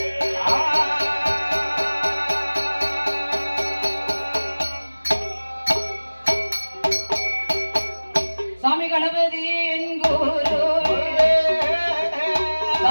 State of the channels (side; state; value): both; inverted; correlation -1.00